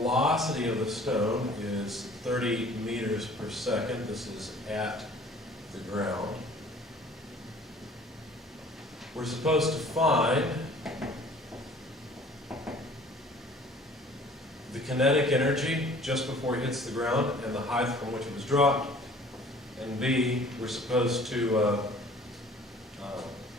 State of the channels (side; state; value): both; normal; correlation 0.50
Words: of the stone is 30 meters per second. This is at the ground. We're supposed to find the kinetic energy just before it hits the ground and the height from which it was dropped. And B, we're supposed to